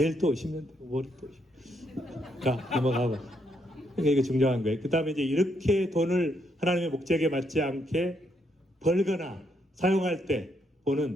또 오시면 되고, 월요일 또 오시면. 자, 넘어가봐. 그러니까 이거 중요한 거예요. 그 다음에 이제 이렇게 돈을 하나님의 목적에 맞지 않게 벌거나 사용할 때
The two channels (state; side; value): normal; both; correlation 0.75